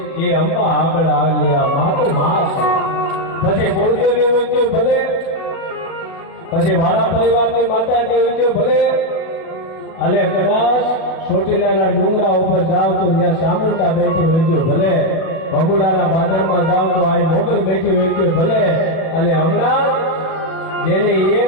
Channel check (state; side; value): late; right; 37 ms